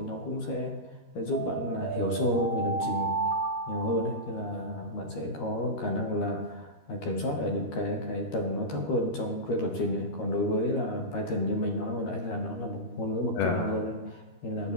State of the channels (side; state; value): right; late; 13 ms